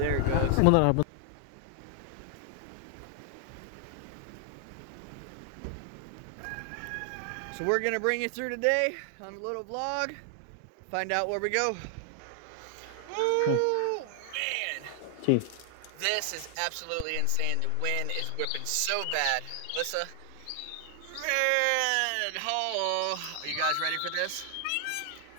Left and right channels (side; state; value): both; different; correlation 0.00